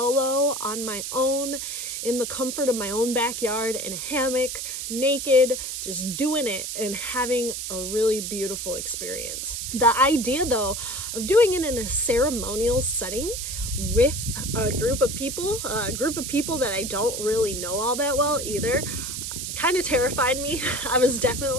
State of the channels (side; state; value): right; noise; hiss, 5 dB below the sound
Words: on my own in the comfort of my own backyard in a hammock, naked, just doing it and having a really beautiful experience. The idea though of doing it in a ceremonial setting with a group of people that I don't really know all that well either, kind of terrified me. I was